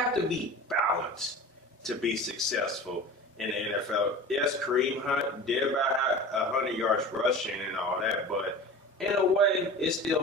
to be balanced to be successful in the NFL. Yes, Kareem Hunt did about 100 yards rushing and all that, but in a way, it still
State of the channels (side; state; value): both; normal; correlation 0.36